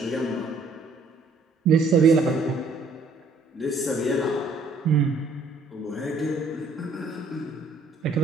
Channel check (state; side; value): quieter; left; 3.4 dB